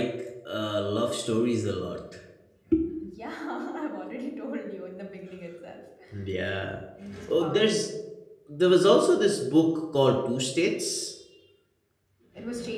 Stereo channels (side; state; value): both; identical; correlation 1.00